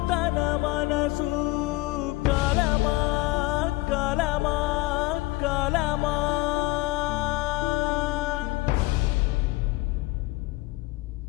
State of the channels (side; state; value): right; quieter; 20.7 dB